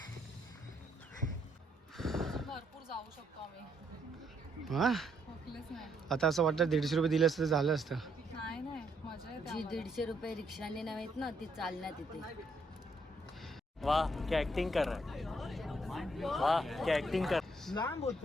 हा आता असं वाटतं 150 रुपये दिले असतं तर झालं असतं. जी 150 रुपये रिक्षाने नाहीत ना ती चालण्यात येते. वाह क्या एक्टिंग कर रहा है, वाह क्या एक्टिंग कर.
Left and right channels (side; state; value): both; normal; correlation 0.72